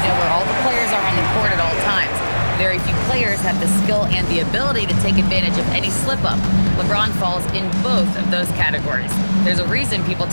know where all the players are on the court at all times. Very few players have the skill and the ability to take advantage of any slip-up. LeBron falls in both of those categories. There's a reason people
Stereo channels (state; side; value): inverted; both; correlation -1.00